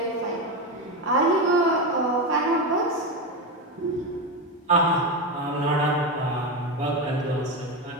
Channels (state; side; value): normal; both; correlation 0.14